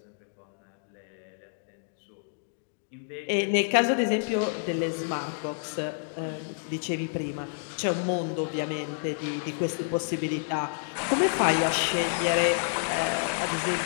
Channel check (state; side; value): silent; right; digital silence